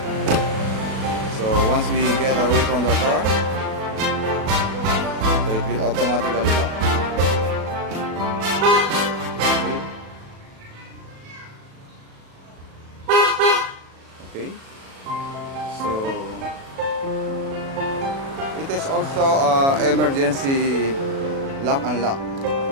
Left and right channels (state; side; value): late; left; 36 ms